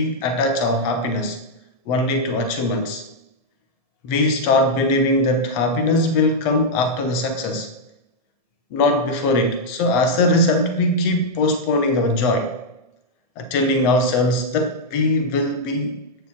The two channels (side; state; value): right; late; 1.7 ms